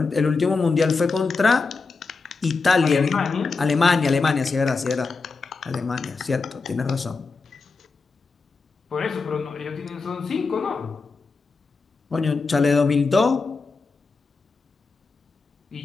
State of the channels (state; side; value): quieter; right; 4.3 dB